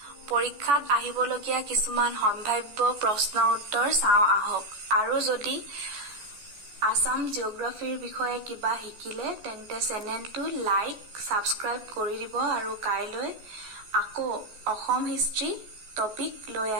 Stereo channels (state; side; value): late; left; 14 ms